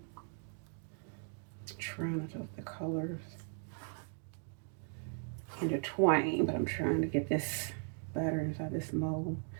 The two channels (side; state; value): left; silent; 52 dB below the other